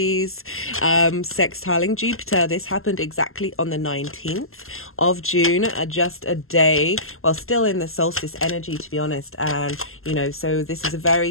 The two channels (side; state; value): right; late; 0.62 ms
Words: sextiling Jupiter. This happened exactly on the 19th of June, just a day, well, still in the solstice energy, to be honest. And, so this is a